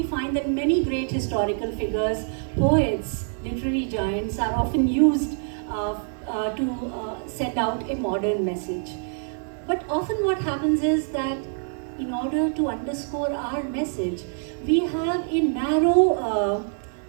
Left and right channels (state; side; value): silent; left; 62 dB below the other